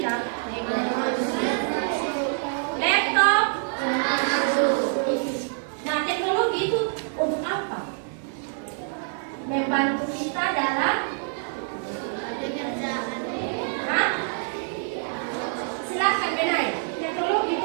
Laptop? Nah, teknologi itu untuk apa? Membantu kita dalam Hah? Silakan Benai. Teknologi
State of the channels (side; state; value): left; silent; 61 dB below the other